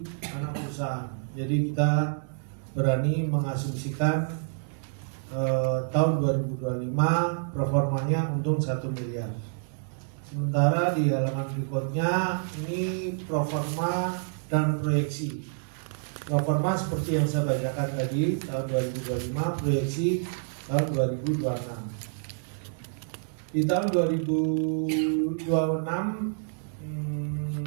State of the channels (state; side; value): silent; left; digital silence